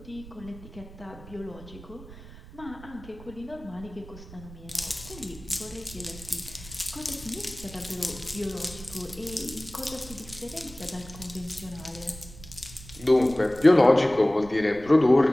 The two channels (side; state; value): right; noise; rumble, 17 dB below the sound